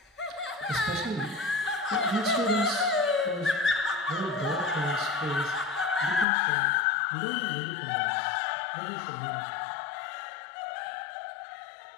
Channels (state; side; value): drops out; right; at 6.2 s